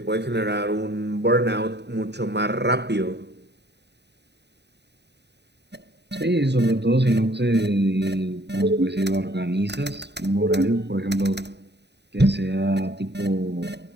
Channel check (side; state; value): left; late; 0.50 ms